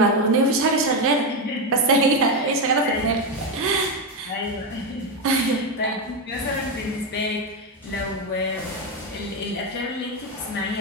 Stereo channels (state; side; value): normal; both; correlation 0.10